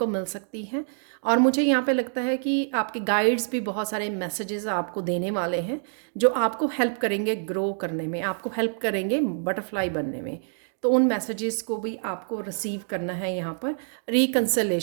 मिल सकती है। और मुझे यहाँ पे लगता है कि आपके गाइड्स भी बहुत सारे मैसेजेस आपको देने वाले हैं जो आपको हेल्प करेंगे ग्रो करने में, आपको हेल्प करेंगे बटरफ्लाई बनने में। तो उन मैसेजेस को भी आपको रिसीव करना है यहाँ पर।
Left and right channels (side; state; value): left; silent; digital silence